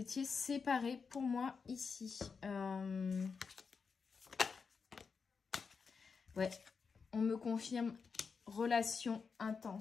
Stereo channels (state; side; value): quieter; right; 5.4 dB